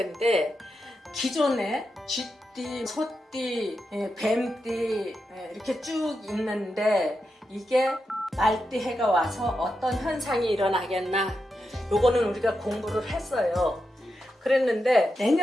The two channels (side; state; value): both; normal; correlation 0.87